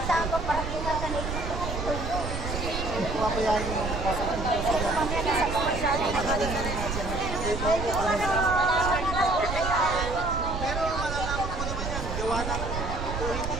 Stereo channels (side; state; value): right; noise; rumble, 4 dB below the sound